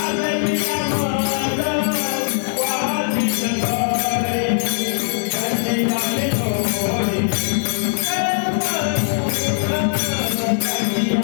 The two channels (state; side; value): silent; right; 56 dB below the other